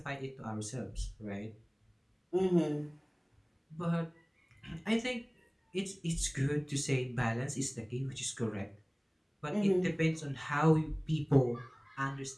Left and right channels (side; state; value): both; identical; correlation 1.00